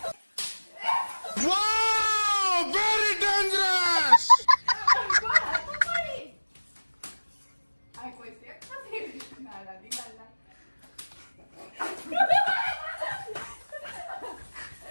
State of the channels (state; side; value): inverted; both; correlation -1.00